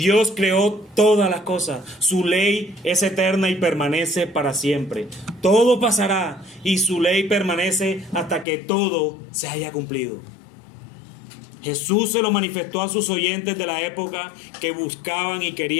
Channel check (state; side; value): drops out; right; at 8.5 s